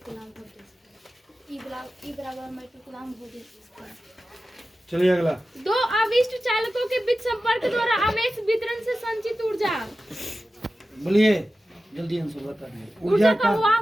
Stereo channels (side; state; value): both; normal; correlation 0.94